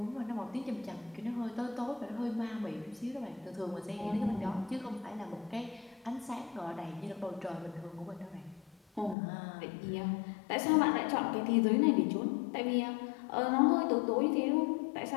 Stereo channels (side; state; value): right; drops out; at 9.2 s